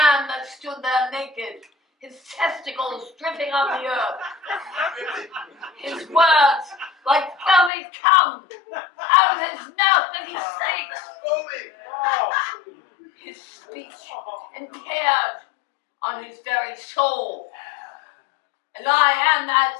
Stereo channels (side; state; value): right; drops out; at 7.7 s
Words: that stood there naked, his testicles dripping on the earth, his words like filmy cum out of his mouth that he speaks. His speech impaired on his very soul. And I am